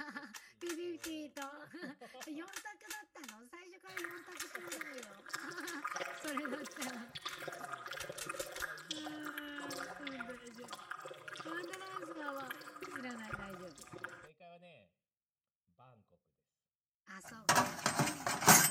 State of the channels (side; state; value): both; identical; correlation 1.00